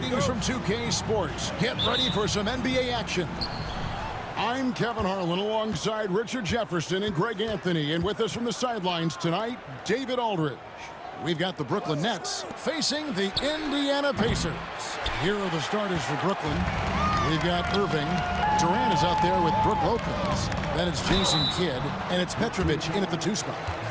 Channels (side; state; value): both; identical; correlation 1.00